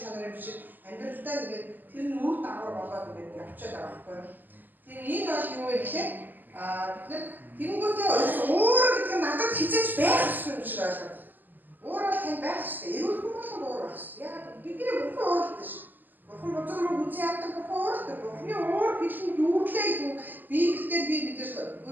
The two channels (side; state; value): left; late; 0.087 ms